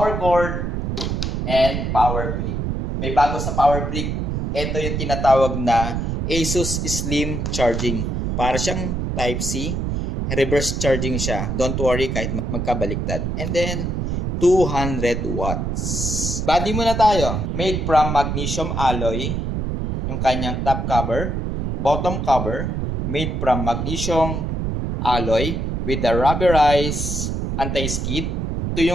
cord, and power brick. May bago sa power brick. Ito yung tinatawag na Asus Slim Charging. Para siyang Type-C. Reverse charging siya. Don't worry kahit magkabaliktad. And then, 200 watts. Body muna tayo. Made from magnesium alloy. Yung kanyang top cover. Bottom cover. Made from magnesium alloy with the rubberized anti-skid. Ito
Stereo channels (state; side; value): noise; right; rumble, 1 dB below the sound